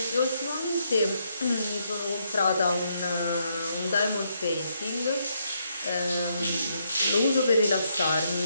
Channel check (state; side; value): inverted; both; correlation -0.76